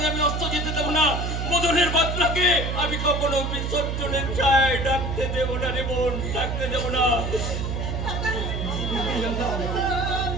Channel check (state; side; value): noise; right; hum, 2 dB below the sound